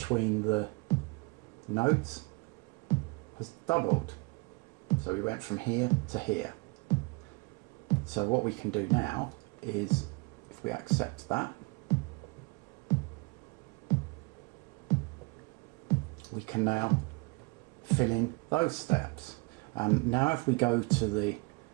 the notes has doubled. So we went from here to here. So what we can do now is, if we accept that, we can now fill in those steps. And now if we go to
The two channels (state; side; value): quieter; left; 28.4 dB